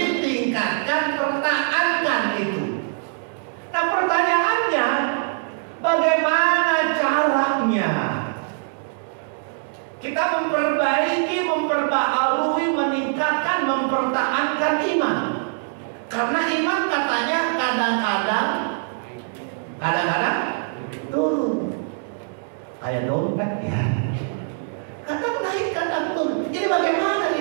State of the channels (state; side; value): silent; left; 63 dB below the other